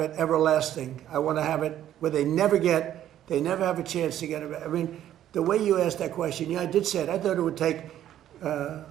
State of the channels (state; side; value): quieter; left; 11.7 dB